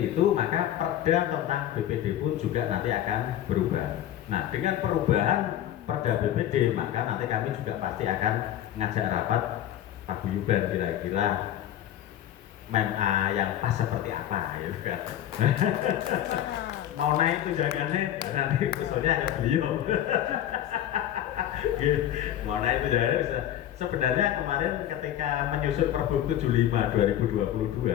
itu maka perda tentang BPD pun juga nanti akan berubah. Nah, dengan perubahan perda BPD maka nanti kami juga pasti akan ngajak rapat paguyuban kira-kira MEMA yang pas seperti apa ya kan. Mau naik tunjangannya nanti usulnya ada beliau. Mau naik tunjangannya bisa. Sebenarnya kemarin ketika menyusun Pergub 75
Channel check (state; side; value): quieter; right; 11.7 dB